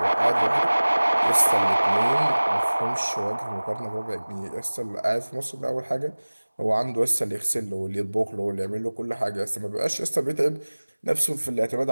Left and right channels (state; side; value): inverted; both; correlation -1.00